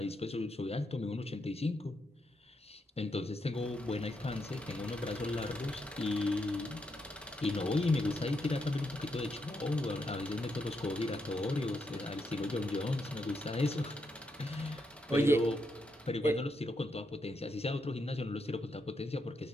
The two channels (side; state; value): both; normal; correlation 0.80